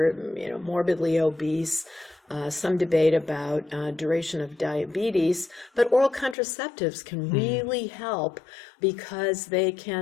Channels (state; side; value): drops out; right; at 6.4 s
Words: morbidly obese, some debate about duration of diabetes, but oral contraceptives can really help because they